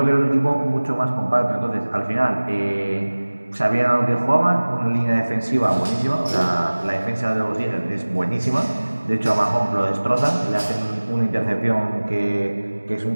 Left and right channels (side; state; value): both; inverted; correlation -1.00